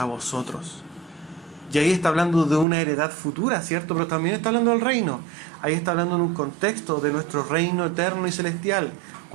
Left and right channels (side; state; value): left; drops out; at 2.7 s